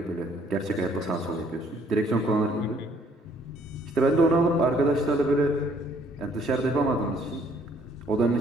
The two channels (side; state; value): both; normal; correlation 0.63